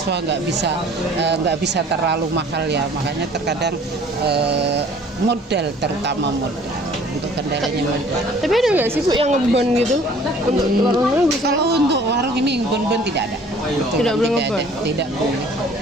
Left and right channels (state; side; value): normal; both; correlation 0.53